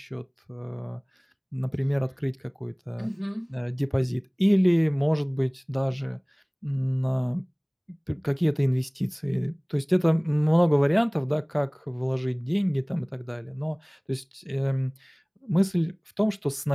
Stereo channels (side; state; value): both; identical; correlation 1.00